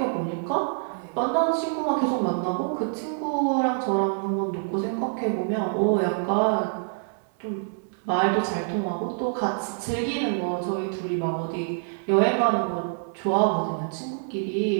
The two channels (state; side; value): silent; left; 61 dB below the other